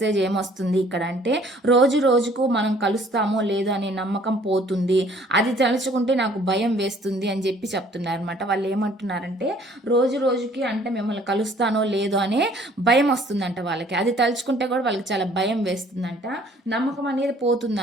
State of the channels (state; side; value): normal; both; correlation 0.57